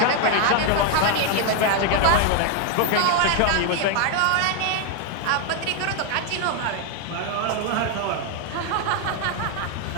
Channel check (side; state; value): both; different; correlation 0.00